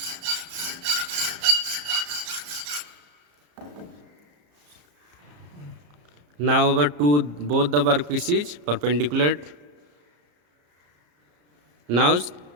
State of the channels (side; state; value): left; late; 34 ms